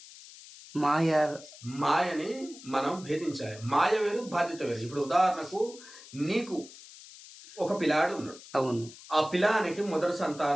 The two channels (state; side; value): noise; left; hiss, 18 dB below the sound